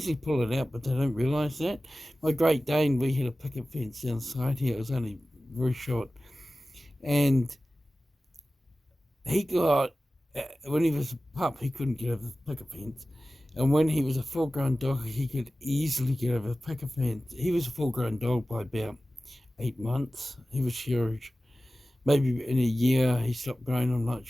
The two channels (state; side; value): normal; both; correlation 0.96